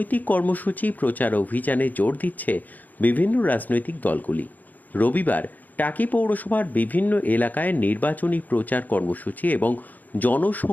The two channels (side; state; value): right; late; 0.082 ms